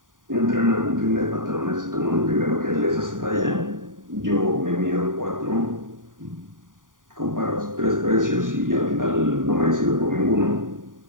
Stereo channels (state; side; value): late; left; 0.89 ms